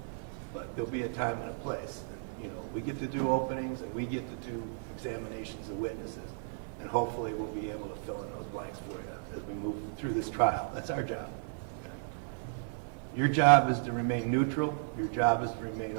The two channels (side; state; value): left; silent; digital silence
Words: but there'll be a time and a place. And, we get to do openings and we get to do examinations of witnesses, and hopefully we'll be able to fill in those blanks for you as we move through this trial. That's our job. Okay? Your job is to remain neutral. Your job is to remain